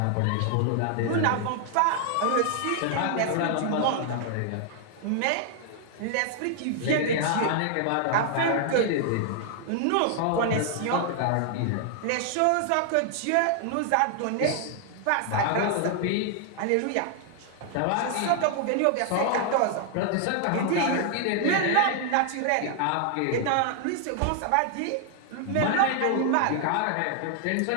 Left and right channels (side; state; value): both; different; correlation 0.00